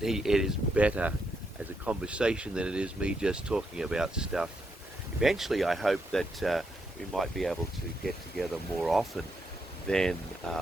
is better as a conversation than it is me just talking about stuff. Eventually, I hope that we might be able to get together more often than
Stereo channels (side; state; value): both; normal; correlation 0.80